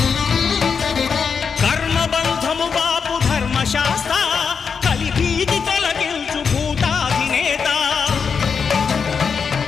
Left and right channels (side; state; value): right; quieter; 6.0 dB